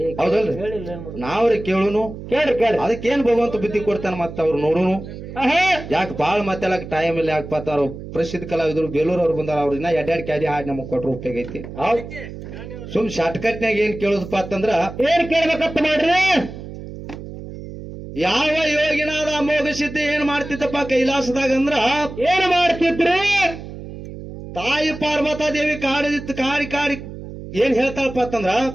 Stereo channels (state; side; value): noise; right; hum, 11 dB below the sound